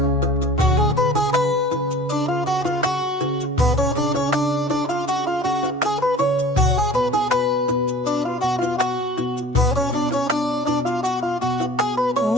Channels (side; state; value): both; normal; correlation 0.44